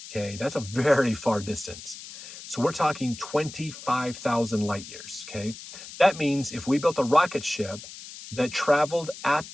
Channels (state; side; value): noise; left; hiss, 14 dB below the sound